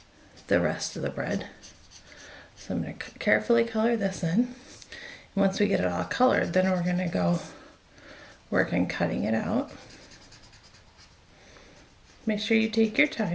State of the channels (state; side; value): identical; both; correlation 1.00